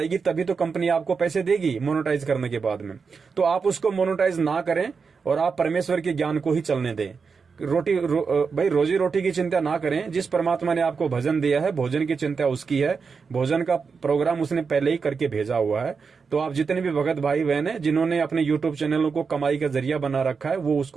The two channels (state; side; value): quieter; left; 5.3 dB